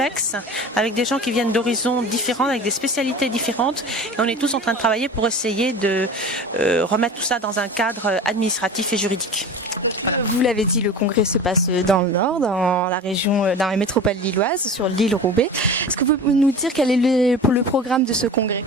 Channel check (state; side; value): normal; both; correlation 0.35